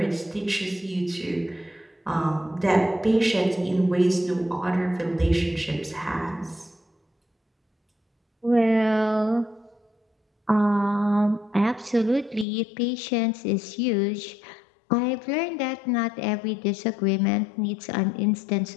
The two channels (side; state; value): right; drops out; at 12.5 s